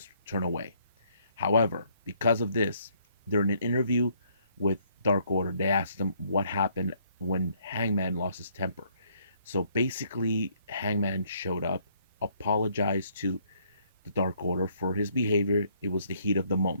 turn away. However, because of this, during an interview with Dark Order, they asked him what happened when Hangman lost his temper. So basically, Hangman showed up, apologized to the Dark Order for his behavior. It was the heat of the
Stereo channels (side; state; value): both; inverted; correlation -0.67